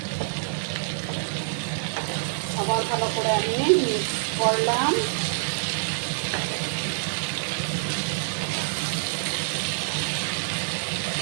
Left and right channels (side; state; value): left; silent; digital silence